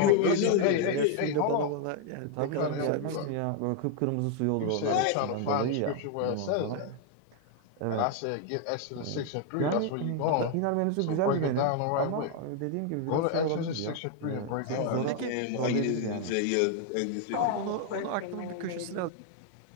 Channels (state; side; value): different; both; correlation 0.00